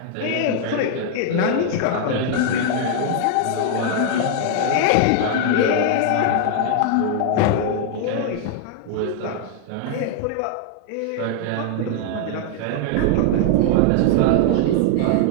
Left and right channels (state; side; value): different; both; correlation 0.00